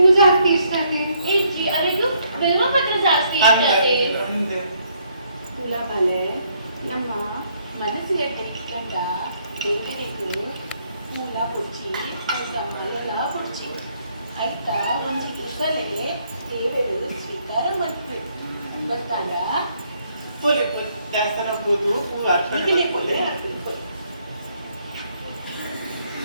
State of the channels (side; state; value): both; inverted; correlation -0.70